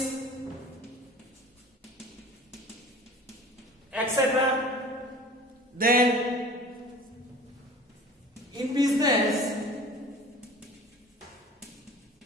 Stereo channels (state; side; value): normal; both; correlation 0.42